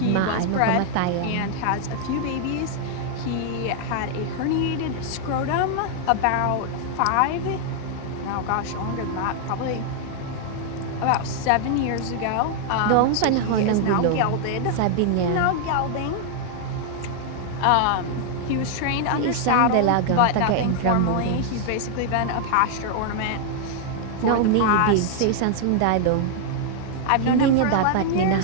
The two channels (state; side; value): different; both; correlation 0.00